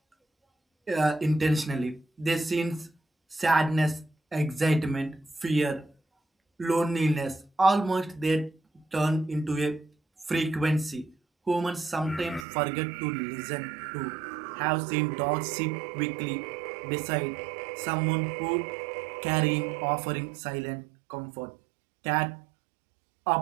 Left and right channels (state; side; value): drops out; left; at 12.5 s